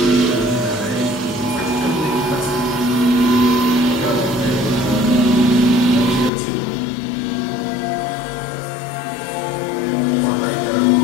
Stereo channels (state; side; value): drops out; right; at 6.3 s